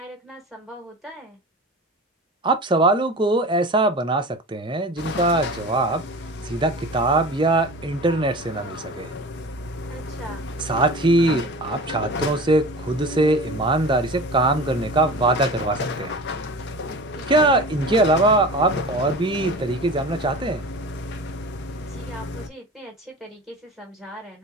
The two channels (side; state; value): both; normal; correlation 0.35